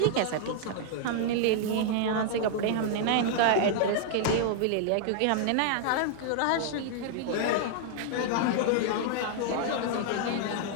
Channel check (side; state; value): both; different; correlation -0.01